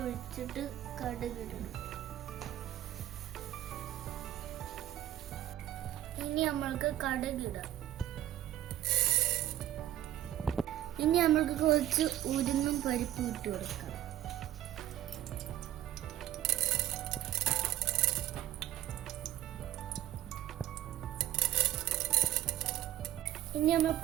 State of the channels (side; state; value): left; quieter; 13.0 dB